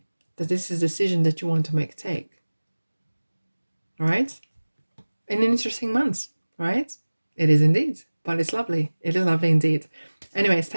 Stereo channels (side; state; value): both; inverted; correlation -1.00